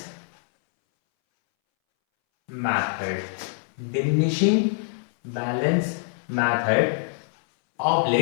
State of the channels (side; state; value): right; silent; 62 dB below the other